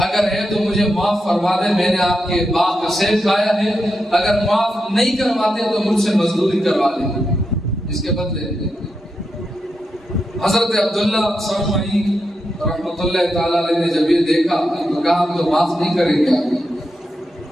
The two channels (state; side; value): normal; both; correlation 0.86